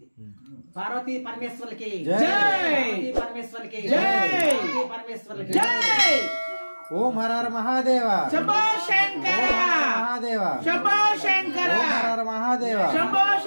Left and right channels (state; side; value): inverted; both; correlation -1.00